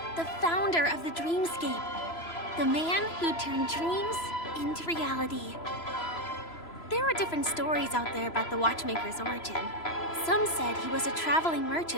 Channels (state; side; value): late; right; 3.0 ms